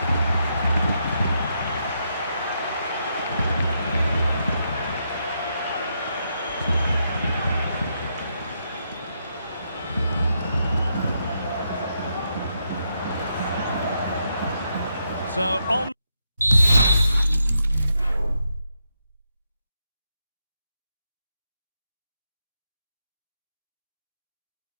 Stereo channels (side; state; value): both; inverted; correlation -0.80